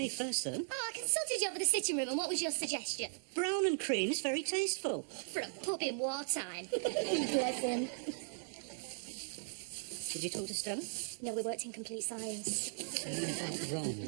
first, though. Oh, I consulted you over the sitting room, and what was your suggestion? Brown and cream is very tasteful. For a pub in wartime. Bless him. Did you talk to Stella? No, we worked in complete silence. Wrong.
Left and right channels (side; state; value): left; silent; digital silence